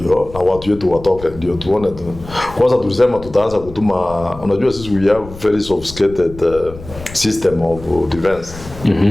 na watu wetu watoke ndio tuone tu. Kwanza tulisema tutaanza kutuma, unajua sisi we have very sophisticated system of defense.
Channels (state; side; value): noise; left; rumble, 15 dB below the sound